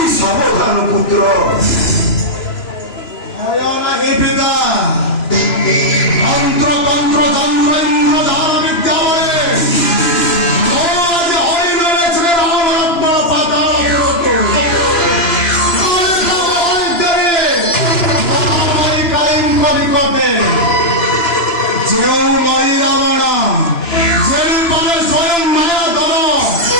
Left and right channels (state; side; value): late; right; 3.0 ms